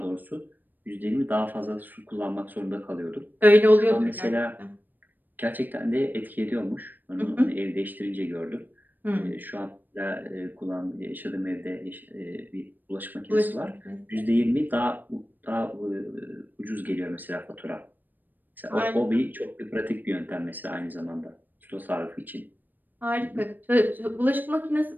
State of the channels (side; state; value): left; late; 0.089 ms